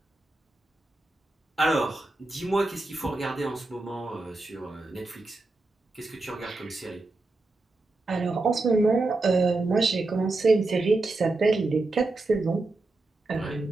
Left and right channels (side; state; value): left; quieter; 3.1 dB